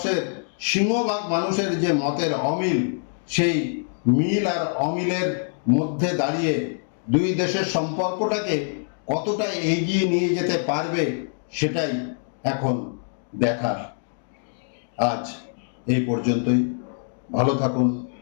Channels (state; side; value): silent; right; digital silence